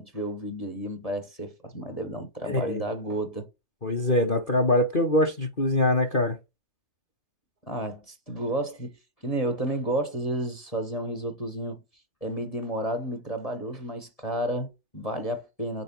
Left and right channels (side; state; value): right; late; 1.7 ms